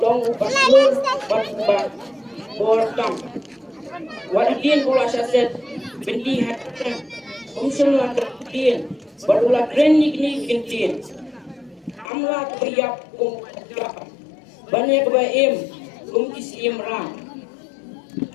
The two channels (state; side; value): drops out; right; at 12.1 s